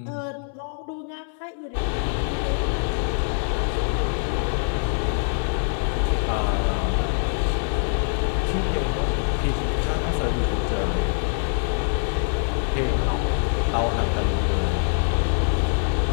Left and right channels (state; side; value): silent; right; 63 dB below the other